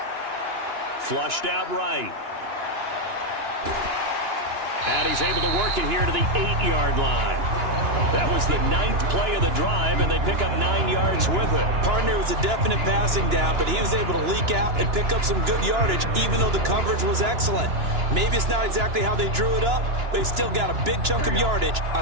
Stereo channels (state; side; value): late; left; 2.9 ms